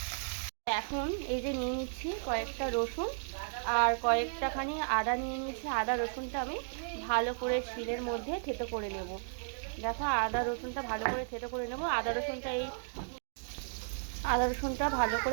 এখন এই যে নিয়ে নিচ্ছি কয়েকটা রসুন আর কয়েকটাখানি আদা নিয়ে নিয়েছি। আদা রসুনটা আমি ভালো করে শিলের মধ্যে থেতো করে নেব। দেখো আদা রসুনটা ভালো করে থেতো করে নেব। আদা রসুনটা ভালো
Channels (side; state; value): left; silent; digital silence